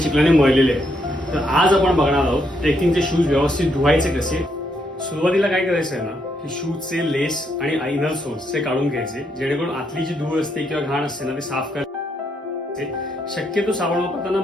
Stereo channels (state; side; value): normal; both; correlation 0.76